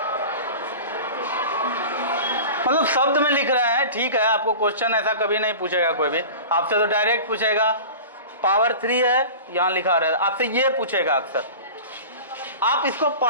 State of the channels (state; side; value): inverted; both; correlation -0.35